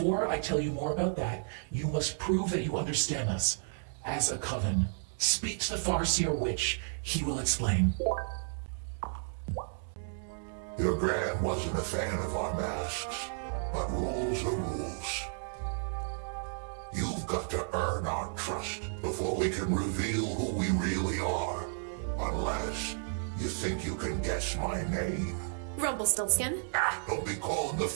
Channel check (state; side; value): silent; left; digital silence